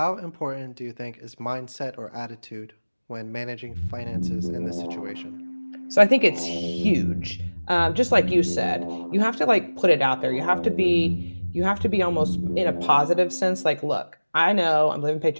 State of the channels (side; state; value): both; inverted; correlation -1.00